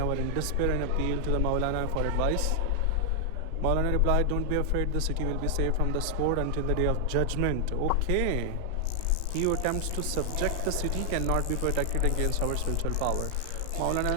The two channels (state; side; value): different; both; correlation 0.00